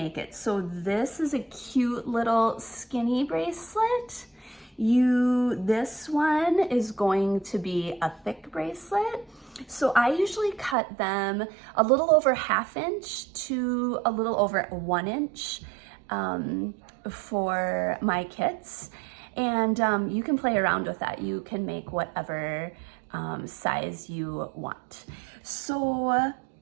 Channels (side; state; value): left; drops out; at 10.8 s